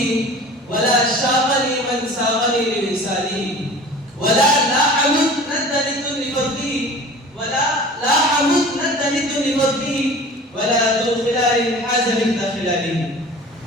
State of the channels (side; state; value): both; normal; correlation 0.42